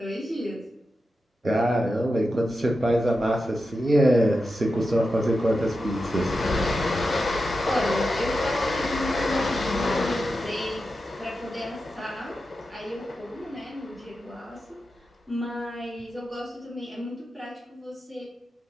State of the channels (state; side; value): normal; both; correlation 0.90